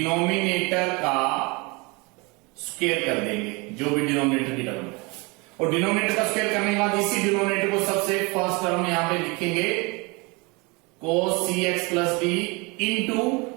का स्क्वायर कर देंगे, जो भी डिनोमिनेटर की टर्म है। और डिनोमिनेटर का स्क्वायर करने के बाद इसी डिनोमिनेटर को सबसे फर्स्ट टर्म यहां पे लिखेंगे cos cx plus d into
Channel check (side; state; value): left; quieter; 27.7 dB